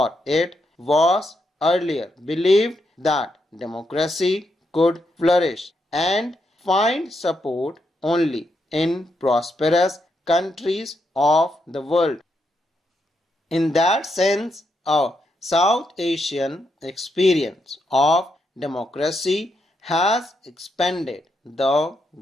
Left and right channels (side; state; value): both; normal; correlation 0.81